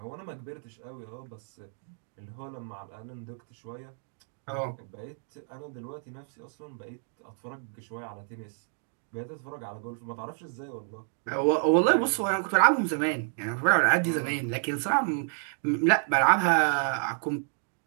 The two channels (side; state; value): left; silent; 58 dB below the other